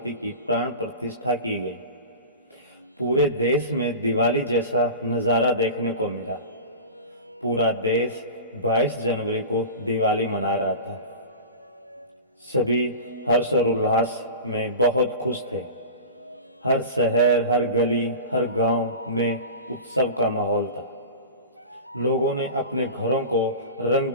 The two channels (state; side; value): inverted; both; correlation -0.32